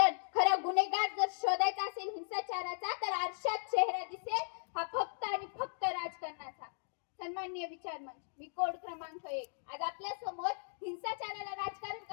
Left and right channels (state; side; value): silent; right; digital silence